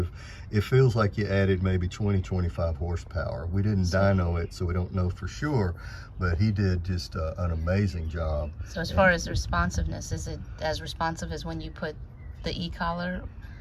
It feels like you added maybe 20-25 horsepower. We didn't dyno it, so we don't know for sure, but he did just an amazing job. So as far as responsiveness, is it as responsive as when you put the e-collar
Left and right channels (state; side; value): identical; both; correlation 1.00